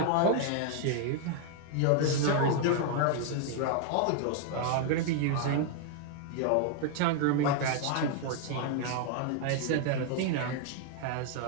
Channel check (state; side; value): different; both; correlation 0.00